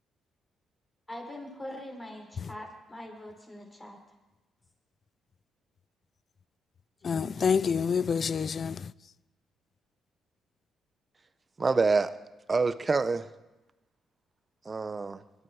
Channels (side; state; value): both; normal; correlation 0.85